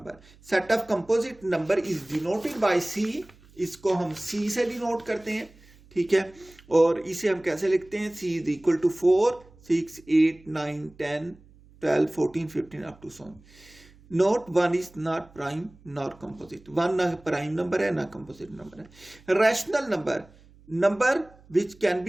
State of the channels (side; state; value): right; noise; hum, 26 dB below the sound